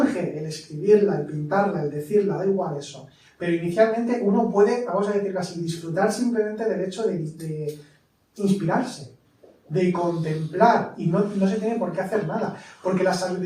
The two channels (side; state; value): both; identical; correlation 1.00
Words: el escribirla, el pintarla, el decirla, da igual eso. Pero inicialmente uno puede, vamos a decirlo así, disfrutar simplemente del hecho de inspirarse, de contemplar, y no se tiene por qué hacer nada. Porque la